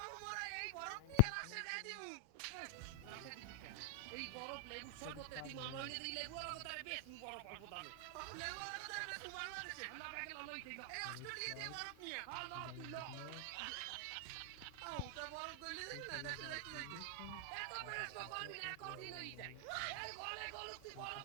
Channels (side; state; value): both; different; correlation 0.00